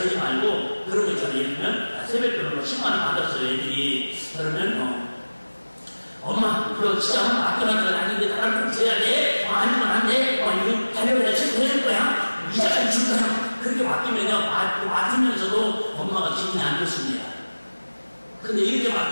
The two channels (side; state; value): both; inverted; correlation -1.00